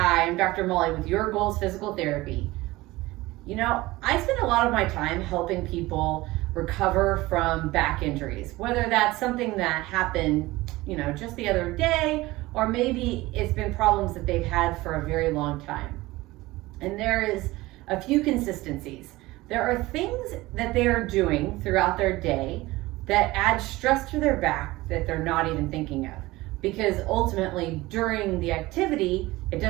I'm Dr. Molly with Your Goals Physical Therapy. I spend a lot of my time helping people recover from back injuries, whether that's something that happened, just the other day, or maybe it's been problems that they've had for a very long time. And there is a few consistencies. There are things that they are doing throughout their day that add stress to their back that they're not even thinking of, because ultimately during the activity, it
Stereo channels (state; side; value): quieter; left; 19.5 dB